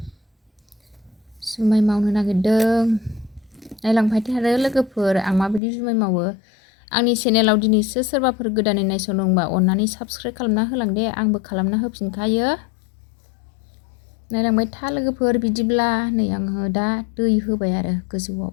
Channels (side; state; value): right; drops out; at 5.6 s